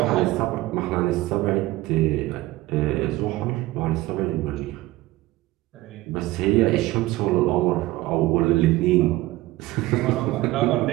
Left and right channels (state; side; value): quieter; left; 18.0 dB